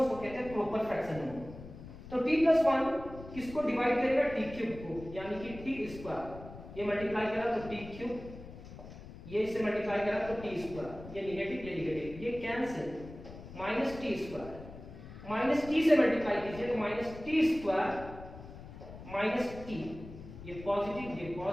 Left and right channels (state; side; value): noise; left; rumble, 14 dB below the sound